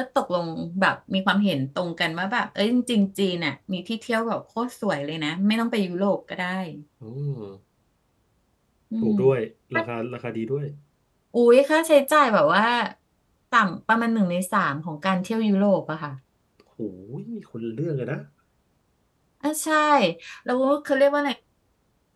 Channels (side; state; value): both; identical; correlation 1.00